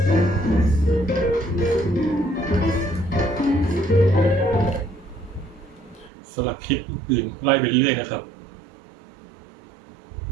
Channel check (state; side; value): drops out; left; at 6.1 s